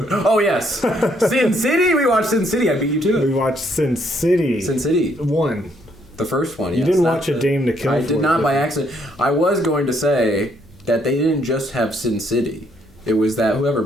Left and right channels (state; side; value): normal; both; correlation 0.70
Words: Oh, yes. Sin City? We watched Sin City. I beat you to it. We watched Sin City. Sin City. 1. The first one, yes. You didn't watch A Dame to Kill For. I did not by accident. I was going to say that they didn't just have Sin City. It was that whoever